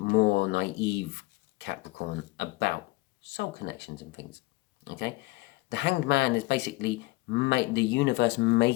naive Capricorn about soul connections and things. Okay, the Hanged Man is basically the universe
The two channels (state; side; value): quieter; right; 22.0 dB